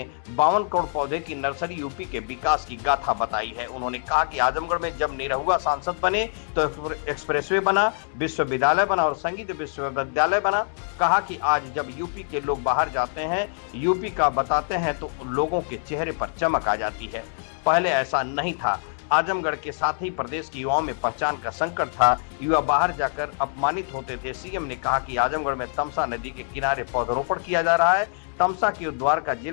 52 करोड़ पौधे की नर्सरी यूपी के विकास की गाथा बताई है। उन्होंने कहा कि आजमगढ़ में जब निरहुआ सांसद बने तो एक्सप्रेसवे बना, विश्वविद्यालय बना और संगीत विश्वविद्यालय बना। कहा कि आज जब यूपी के लोग बाहर जाते हैं, यूपी का बताते हैं तो लोगों के चेहरे पर चमक आ जाती है। पहले ऐसा नहीं था। आजमगढ़ के साथ ही प्रदेश के युवाओं में पहचान का संकट था। युवा बाहर जाकर अपमानित होते थे। सीएम ने कहा कि आजमगढ़ में तमसा नदी के किनारे पौधरोपण किया जा रहा है। तमसा के उद्धार का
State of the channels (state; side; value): silent; right; 61 dB below the other